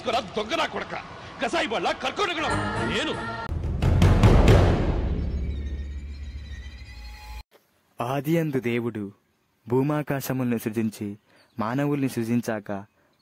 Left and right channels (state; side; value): identical; both; correlation 1.00